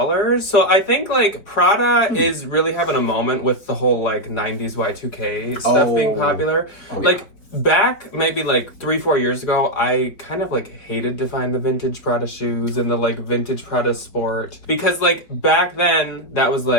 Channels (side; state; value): right; late; 4.5 ms